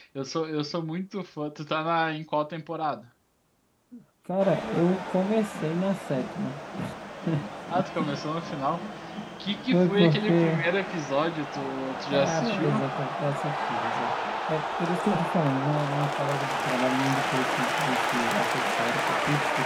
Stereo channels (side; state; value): both; identical; correlation 1.00